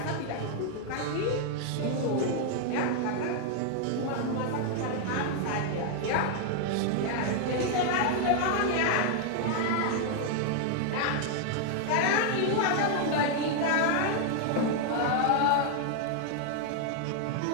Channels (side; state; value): both; different; correlation 0.00